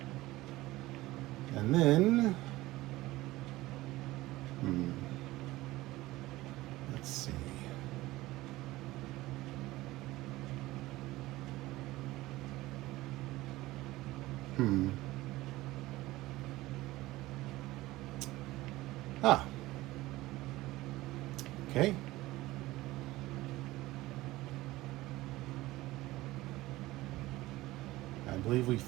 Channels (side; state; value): left; quieter; 18.1 dB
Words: and then let's see. Ah. Okay. I believe we